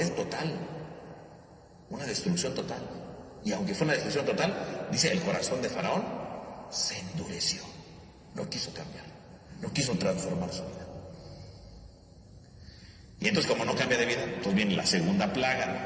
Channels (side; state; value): both; identical; correlation 1.00